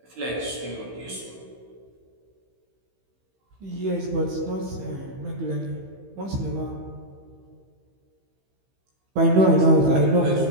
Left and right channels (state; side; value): late; left; 15 ms